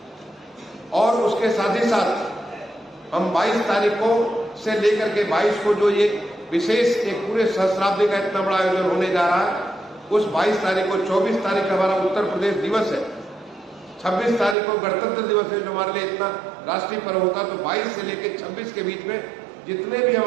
और उसके साथ ही साथ हम 22 तारीखों से लेकर के 22 को जो ये विशेष एक पूरे सहस्राब्दी का इतना बड़ा आयोजन होने जा रहा है, उस 22 तारीख को 24 तारीख हमारा उत्तर प्रदेश दिवस है, 26 तारीख को गणतंत्र दिवस है जो हमारे लिए इतना राष्ट्रीय पर्व होता है। तो 22 से लेकर 26 के बीच में जितने भी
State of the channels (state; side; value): drops out; left; at 14.6 s